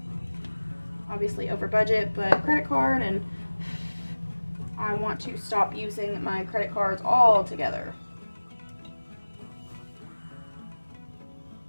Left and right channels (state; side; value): inverted; both; correlation -1.00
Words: Obviously over budget, but credit card, and I want to stop using my credit cards altogether.